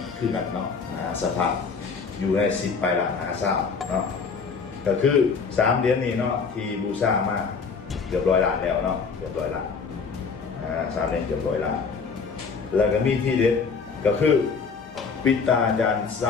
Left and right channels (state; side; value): quieter; right; 5.3 dB